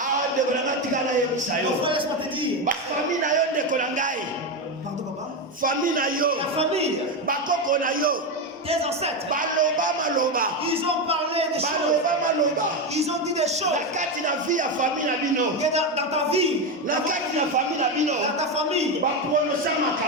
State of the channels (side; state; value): both; normal; correlation 0.12